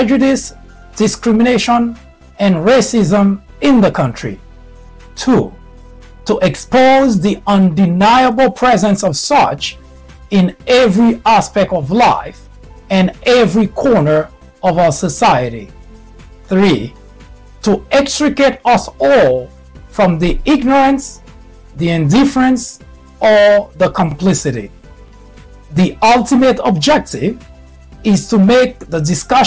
discrimination, and racism in the country. 2. To expose the undeniable presence of such in every aspect of life and every corner of our society. 3. To extricate us all from the ignorance, the indifference, or the complicity. The ultimate objective is to make the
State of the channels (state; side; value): identical; both; correlation 1.00